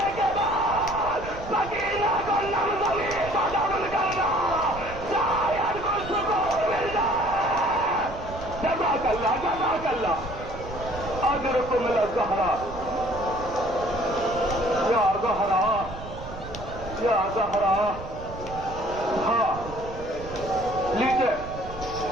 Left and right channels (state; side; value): noise; right; rumble, 12 dB below the sound